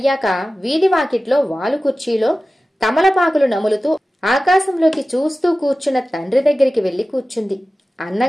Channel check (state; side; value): normal; both; correlation 0.96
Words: వీధి వాకిట్లో వాలు కుర్చీలో తమలపాకులు నములుతూ ఆకాశంలోకి చూస్తూ కూర్చున్న తండ్రి దగ్గరికి వెళ్లి కూర్చుంది.